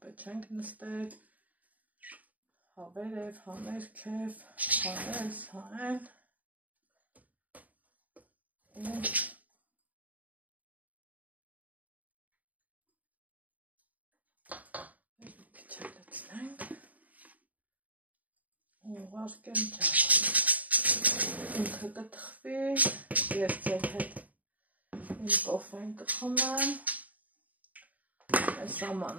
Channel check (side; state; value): left; late; 0.075 ms